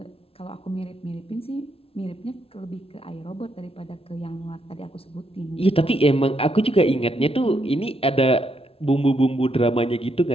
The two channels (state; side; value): late; right; 0.27 ms